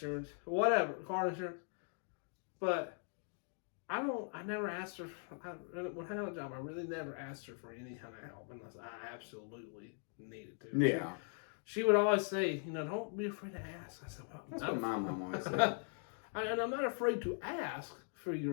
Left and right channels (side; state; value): right; silent; 51 dB below the other